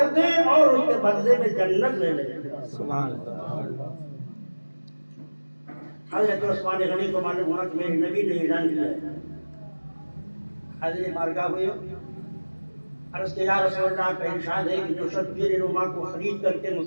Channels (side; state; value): both; inverted; correlation -1.00